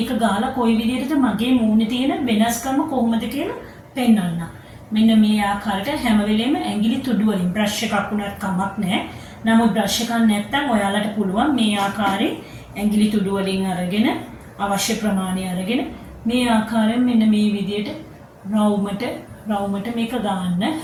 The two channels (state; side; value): identical; both; correlation 1.00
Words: ගහලා කොයි විදිහටද මගේ මූණේ තියෙන වෙනස්කම කොහොමද කියලා පෙන්නන්නම්. මෙන්න මේ ආකාරයට හැම වෙලෙම ඇඟිලි තුඩු වලින් බ්‍රෂ් එකක් උනත් කමක් නැහැ. නමුත් බ්‍රෂ් එකක් නැත්නම් ඔයාලට පුළුවන් මේ ආකාරයෙන් ඇඟිලි තුඩු වලින් අරගෙන අවශ්‍ය ප්‍රමාණය අරගෙන මේ ආකාරයෙන් මෙන්න මේ විදිහට රවුමට මේක ගන්න.